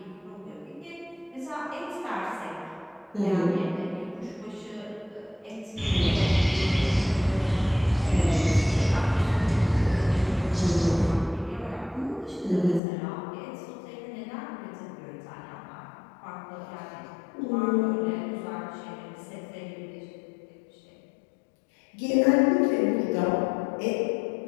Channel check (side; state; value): right; drops out; at 12.8 s